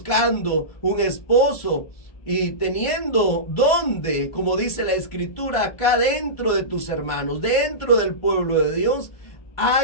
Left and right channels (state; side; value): late; right; 1.5 ms